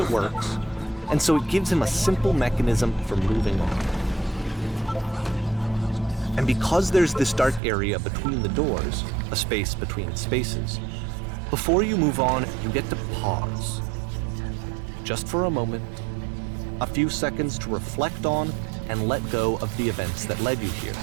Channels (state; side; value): drops out; left; at 7.6 s